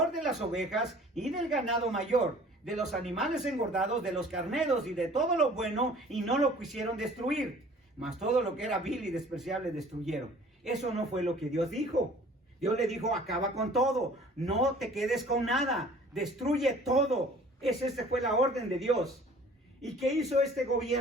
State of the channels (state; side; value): normal; both; correlation 0.50